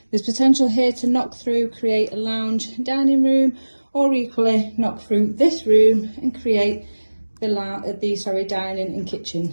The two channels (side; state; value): both; inverted; correlation -1.00